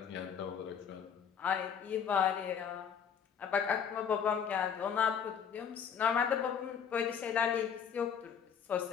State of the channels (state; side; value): quieter; right; 7.5 dB